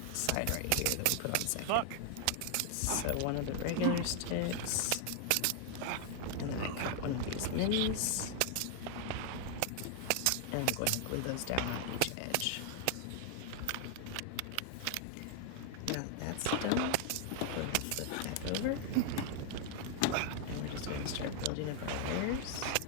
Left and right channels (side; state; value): both; different; correlation 0.00